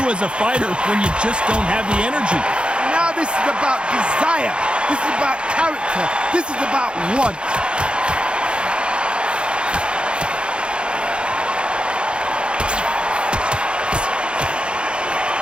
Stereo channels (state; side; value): late; left; 0.055 ms